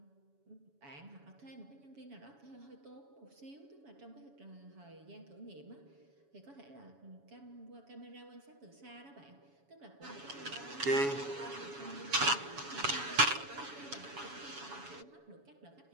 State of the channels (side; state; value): left; late; 7.1 ms